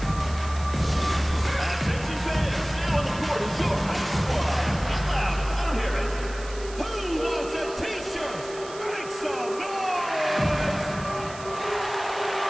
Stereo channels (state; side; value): noise; right; hiss, 16 dB below the sound